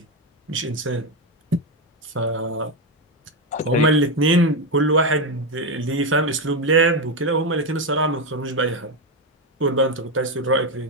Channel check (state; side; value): normal; both; correlation 0.09